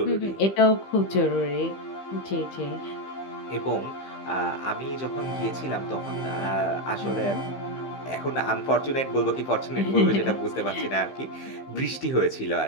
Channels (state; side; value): late; right; 15 ms